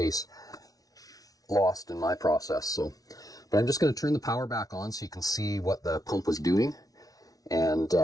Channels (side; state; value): right; late; 0.18 ms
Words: lost in my process. So, but I'm just going to turn the power back on so you can see what the pump was doing. And